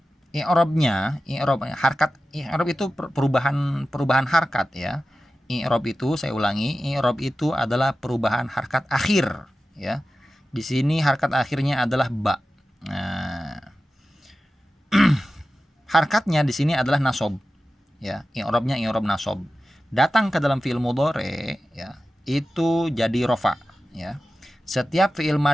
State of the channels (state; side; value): normal; both; correlation 0.94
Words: i'rab itu perubahan harkat ya. I'rab itu, saya ulangi, i'rab itu adalah perubahan harkat akhir ya. Di sini harkat akhirnya adalah ba. Nah, Harkatnya di sini adalah nasob, ya. I'rabnya i'rab nasob. Datang ke dalam fi'il mudhari, ya, itu jadi rofa, ya. Setiap fi'il